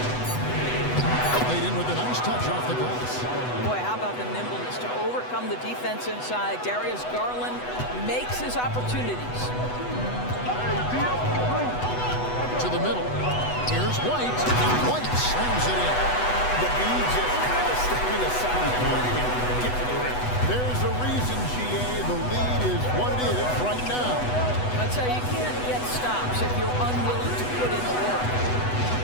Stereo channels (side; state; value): right; late; 8.1 ms